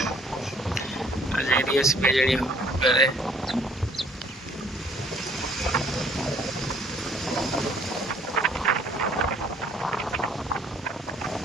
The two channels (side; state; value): both; normal; correlation 0.59